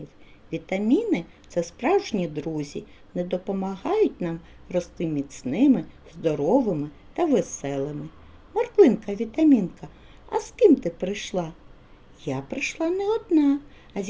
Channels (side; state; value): both; identical; correlation 1.00